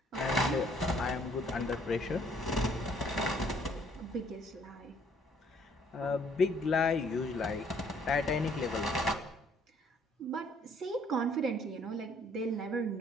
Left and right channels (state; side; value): normal; both; correlation 0.63